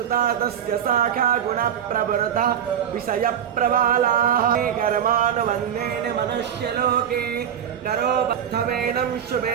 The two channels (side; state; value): left; quieter; 9.1 dB